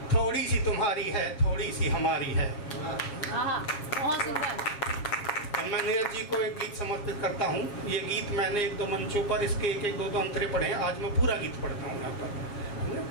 थोड़ी सी तुम्हारी है थोड़ी सी हमारी है। बहुत सुंदर। मैं नीरज जी को एक गीत समर्पित करता हूँ। ये गीत मैंने एक दो मंचों पर इसके एक एक दो अंतरे पढ़े हैं, आज मैं पूरा गीत पढ़ता हूँ यहाँ पर।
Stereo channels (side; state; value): right; late; 7.4 ms